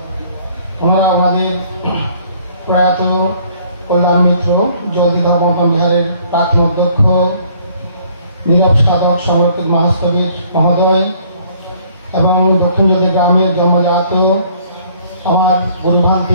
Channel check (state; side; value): inverted; both; correlation -0.60